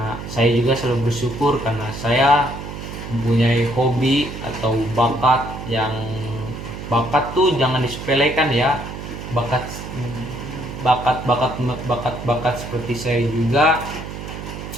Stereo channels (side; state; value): right; noise; hum, 9 dB below the sound